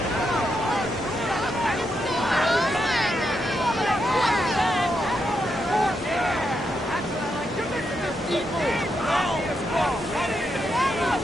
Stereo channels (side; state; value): both; normal; correlation 0.82